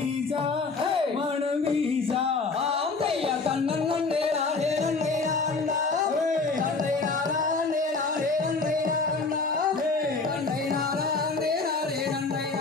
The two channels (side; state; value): right; quieter; 4.0 dB